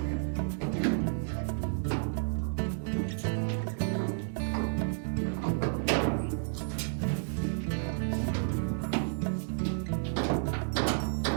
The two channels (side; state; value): left; silent; digital silence